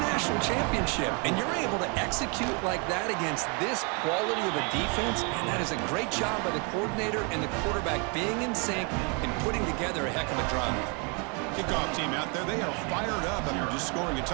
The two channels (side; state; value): left; quieter; 34.3 dB